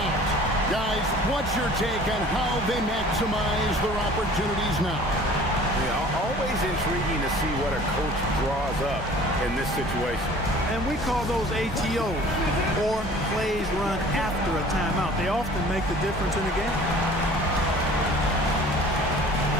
Guys, what's your take on how they maximize their opportunities now? Yeah, always intriguing to see what a coach draws up in this situation. And we call those ATOs, or plays run after a timeout. They often make the difference in the game.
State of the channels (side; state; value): both; normal; correlation 0.48